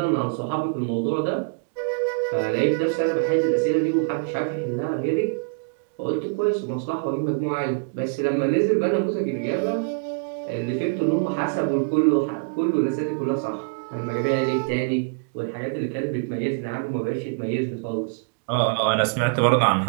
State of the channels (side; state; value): left; quieter; 37.5 dB